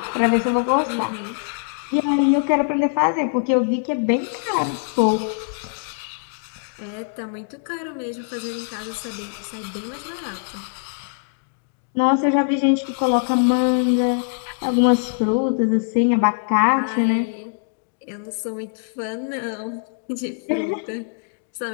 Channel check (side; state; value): right; silent; digital silence